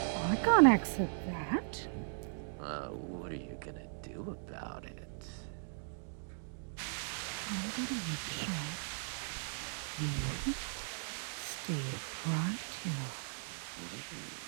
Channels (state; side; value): silent; left; digital silence